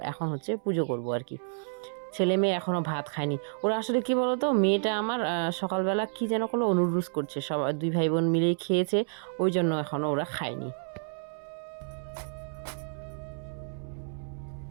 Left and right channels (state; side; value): silent; left; 58 dB below the other